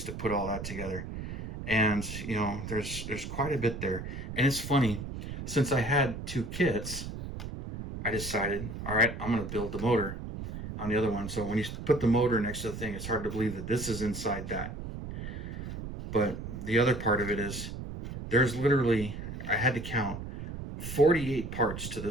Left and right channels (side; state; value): right; noise; rumble, 8 dB below the sound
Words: to put all that together. And there's quite a bit there. And it's funny, since I had 2 kits, I decided, all right, I'm going to build the motor on the other one. So when you put the motor next to the thing, it's hard to believe that this is inside that. But the other part of it is, there's literally, I had to count 48 parts to